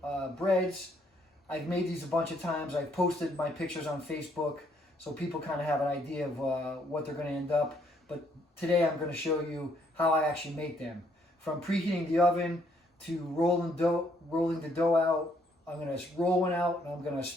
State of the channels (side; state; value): both; normal; correlation 0.69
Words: breads. I've made these a bunch of times. I've posted my pictures on Facebook so people kind of have an idea of what they're going to end up. But today I'm going to show you how I actually make them. From preheating the oven to rolling the dough out. I'm going to roll one out and I'm going to